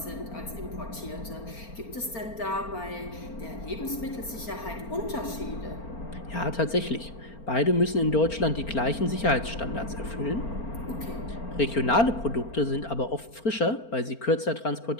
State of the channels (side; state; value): right; late; 4.4 ms